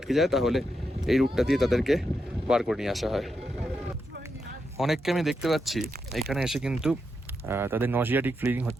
যায় তাহলে এই রুটটা দিয়ে তাদেরকে বার করে নিয়ে আসা হয়। অনেককে আমি দেখতে পাচ্ছি এখানে এসে কিন্তু তাদের নজিয়াটিক ফিলিং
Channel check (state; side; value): normal; both; correlation 0.84